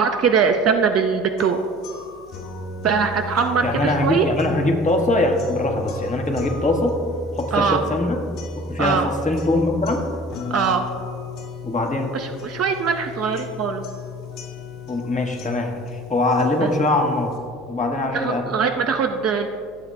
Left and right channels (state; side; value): noise; left; hum, 27 dB below the sound